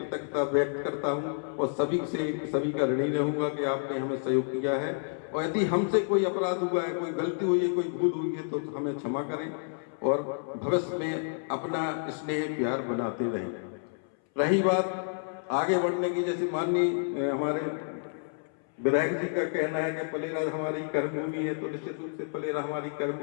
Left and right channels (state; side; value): silent; right; 58 dB below the other